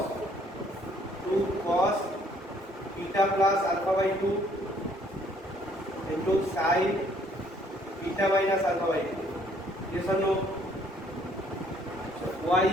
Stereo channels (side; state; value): both; normal; correlation 0.63